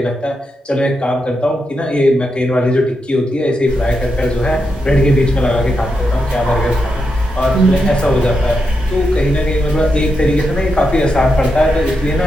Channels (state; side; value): normal; both; correlation 0.85